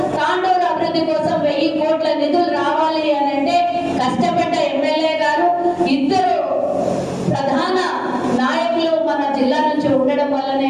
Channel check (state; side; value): identical; both; correlation 1.00